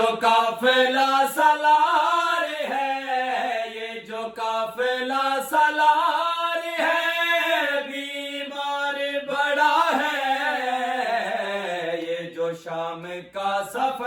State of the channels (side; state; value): both; identical; correlation 1.00